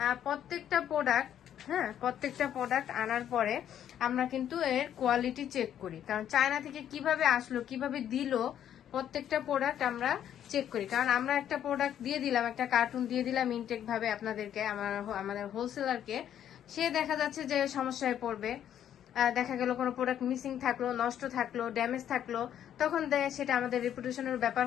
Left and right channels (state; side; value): quieter; right; 10.2 dB